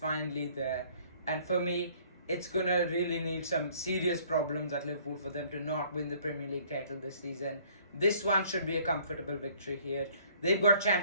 there. And for me, it's going to really need some serious problems at Liverpool for them to not win the Premier League title this season. This one should be a comfortable victory here. They've got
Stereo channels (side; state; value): both; inverted; correlation -0.58